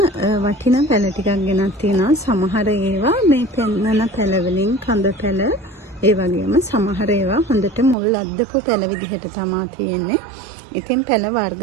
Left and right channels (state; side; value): drops out; left; at 8.0 s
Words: වටිනා පැල ටිකක් ගෙනත් තියෙනවා. සමහර ඒවා මේ පෙන්නන පැල වලින් කඳ පැල, ඒ වගේම සමහර ඒවා හොඳට මුල් අද්දපු පැල විදිහට තමයි තියෙන්නේ. ඉතින් පැල වර්ග